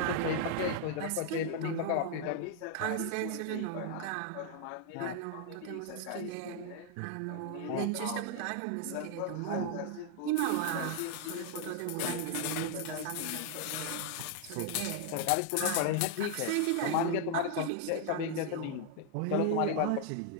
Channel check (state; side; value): different; both; correlation 0.00